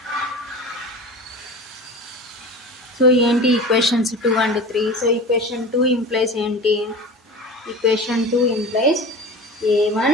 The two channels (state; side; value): normal; both; correlation 0.34